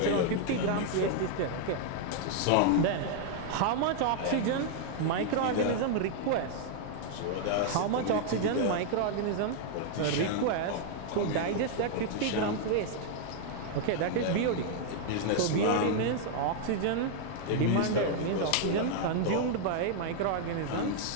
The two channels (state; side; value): different; both; correlation 0.00